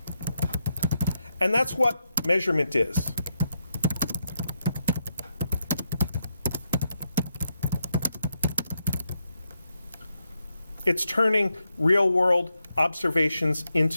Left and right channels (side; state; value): both; inverted; correlation -0.83